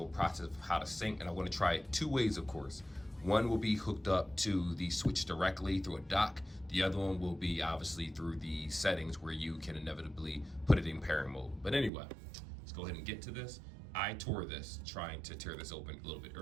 process of how to sync, and I want to try it two ways, of course. One will be hooked up to the Switch directly through a dock. The other one will be obviously through the settings where you can inevitably put it in pairing mode. But anyway, let's go ahead and get to this. I tore this trying to tear this open a little bit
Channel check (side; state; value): left; drops out; at 11.9 s